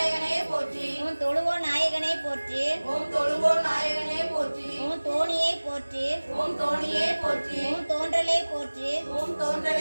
போற்றி, ஓம் தொழுவோ நாயகனே போற்றி, ஓம் தொழுவோ நாயகனே போற்றி, ஓம் தோணியை போற்றி, ஓம் தோணியே போற்றி, ஓம் தோன்றலே போற்றி, ஓம்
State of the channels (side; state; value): both; inverted; correlation -1.00